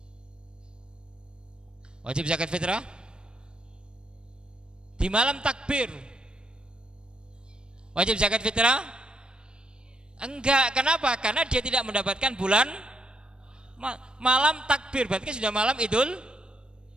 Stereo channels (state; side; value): late; left; 0.052 ms